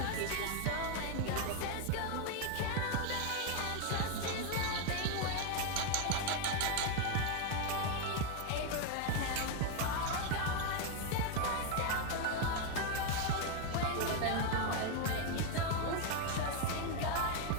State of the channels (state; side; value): different; both; correlation 0.01